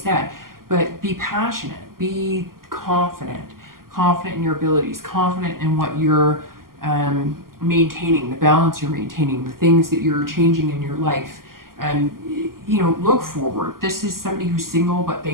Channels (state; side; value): late; left; 0.92 ms